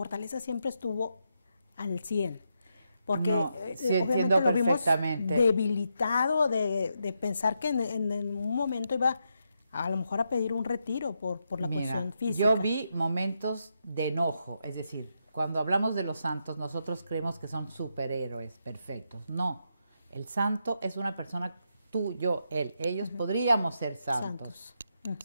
siempre estuvo al 100? Porque no, sí, entiendo lo vimos perfectamente. debilitado de pensar que en un momento iba a lo mejor a pedir un retiro por la cuestión física. Yo vi momentos de enojo, es decir, cuando hablamos de los santos, nosotros creemos que son superhéroes perfectos. No, el santo es una persona, tú, yo, él. Ellos podríamos ser santos.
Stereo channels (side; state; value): both; inverted; correlation -0.82